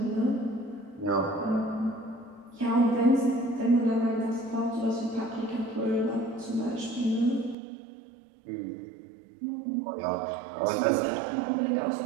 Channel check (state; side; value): drops out; left; at 7.6 s